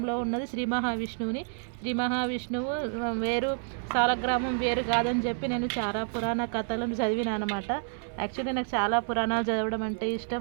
ఉన్నది శ్రీ మహావిష్ణువుని. శ్రీ మహావిష్ణువు వేరు, సాలగ్రామం వేరు కాదని చెప్పి నేను చాలా పురాణ కథలను చదివిన అనమాట. యాక్చువల్లీ నాకు చాలా పురాణాలు చదవడం అంటే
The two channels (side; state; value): left; silent; 59 dB below the other